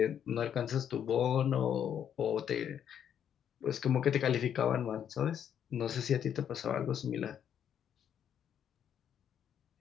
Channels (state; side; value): quieter; right; 9.0 dB